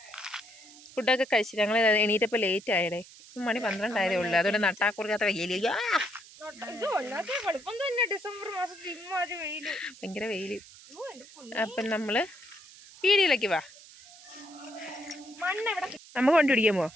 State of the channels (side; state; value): right; noise; hiss, 20 dB below the sound